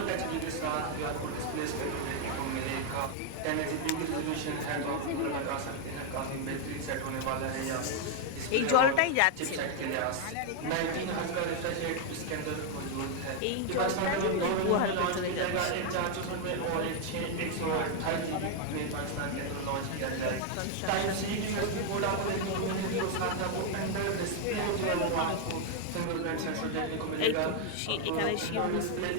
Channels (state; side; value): different; both; correlation 0.01